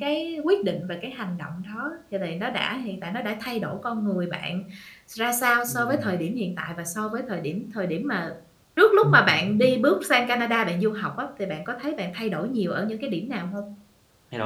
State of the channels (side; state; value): both; identical; correlation 1.00